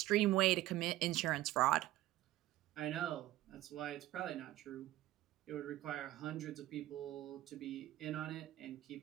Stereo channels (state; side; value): quieter; left; 15.8 dB